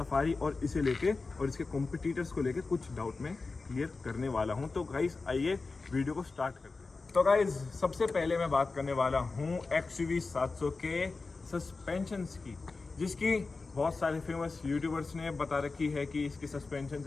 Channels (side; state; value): right; quieter; 3.9 dB